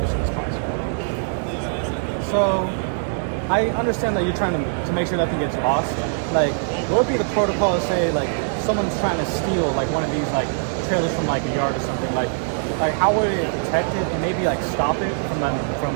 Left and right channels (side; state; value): left; silent; 64 dB below the other